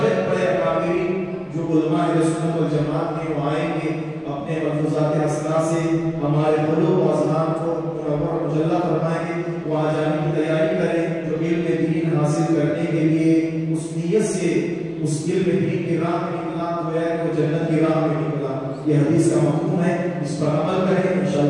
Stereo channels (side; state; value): both; identical; correlation 1.00